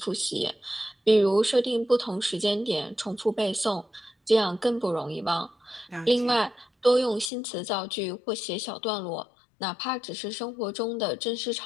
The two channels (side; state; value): right; drops out; at 7.3 s